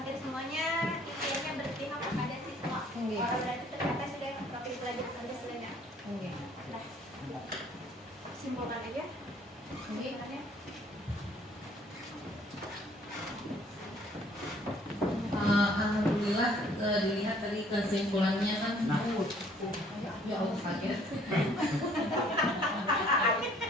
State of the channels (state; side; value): normal; both; correlation 0.59